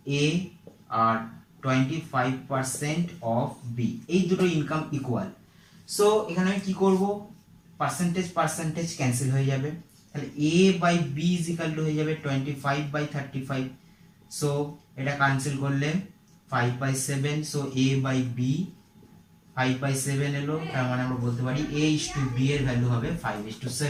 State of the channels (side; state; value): both; identical; correlation 1.00